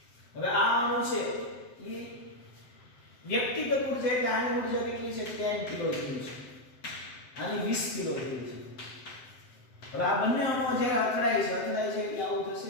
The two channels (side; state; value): right; late; 7.6 ms